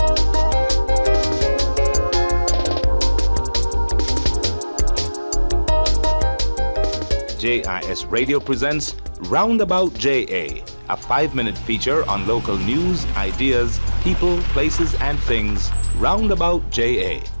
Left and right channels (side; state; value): both; inverted; correlation -1.00